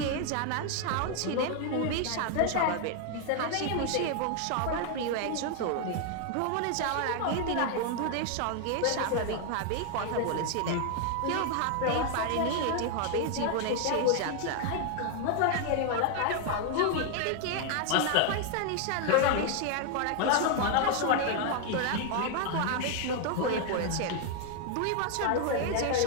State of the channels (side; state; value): both; different; correlation 0.00